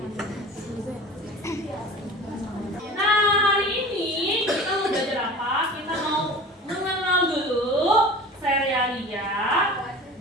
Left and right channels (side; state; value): both; normal; correlation 0.38